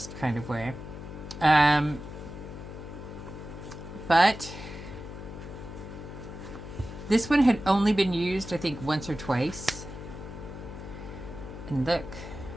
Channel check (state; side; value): noise; left; hum, 11 dB below the sound